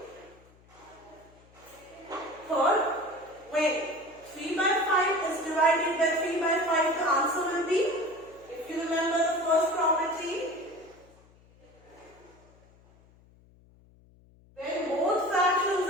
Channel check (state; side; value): noise; left; hum, 28 dB below the sound